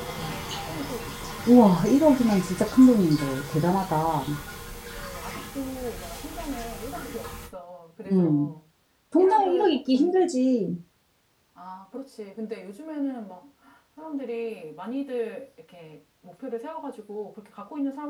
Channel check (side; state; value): both; identical; correlation 1.00